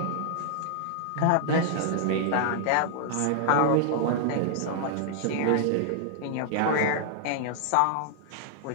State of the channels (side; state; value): both; different; correlation -0.01